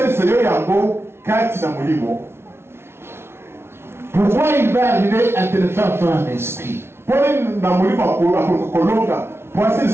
Pourquoi il va arriver à te le faire en esprit?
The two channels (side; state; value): left; late; 0.12 ms